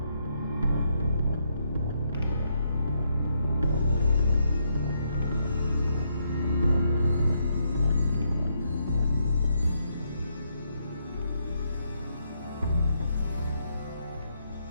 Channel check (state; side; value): inverted; both; correlation -0.77